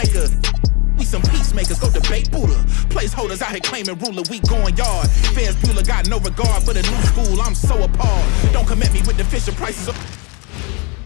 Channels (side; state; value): right; quieter; 31.7 dB